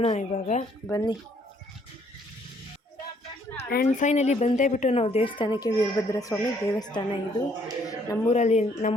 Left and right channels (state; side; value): normal; both; correlation 0.66